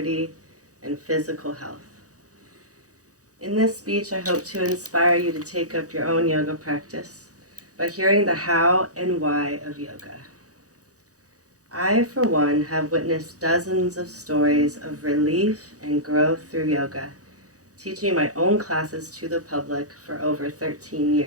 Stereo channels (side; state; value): left; late; 0.66 ms